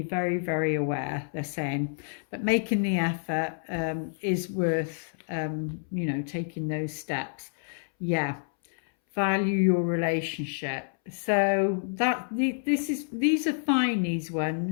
very, very aware, they're saying. But making the effort is worth, you know, taking those steps. Yeah, value your relationship. So that these are fine, these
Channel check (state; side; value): silent; right; 59 dB below the other